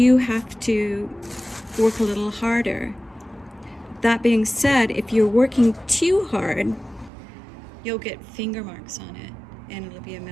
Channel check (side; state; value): left; drops out; at 7.1 s